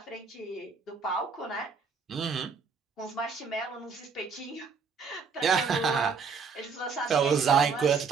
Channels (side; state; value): left; quieter; 5.4 dB